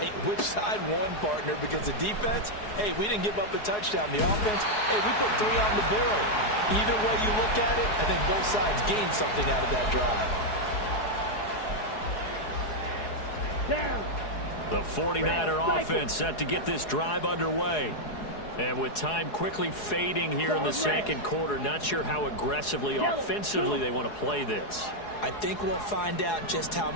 Which side won, partner? Because the defense, hey, we didn't give up a touchdown. The offense, hey, we put 3 on the board. Either way you look at it, I think both sides gained something out of that drive. Down. The 49er offense set to get this drive underway. And with time quickly fading here in the second quarter, not sure how aggressively, offensively they want to play this. I think we'll find out just how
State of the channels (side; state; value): right; late; 4.8 ms